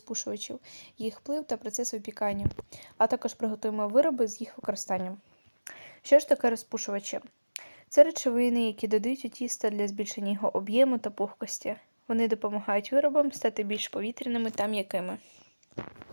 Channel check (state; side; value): inverted; both; correlation -1.00